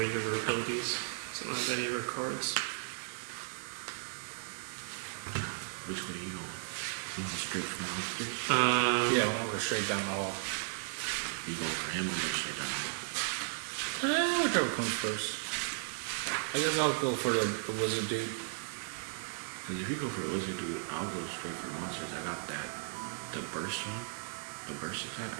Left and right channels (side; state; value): left; silent; digital silence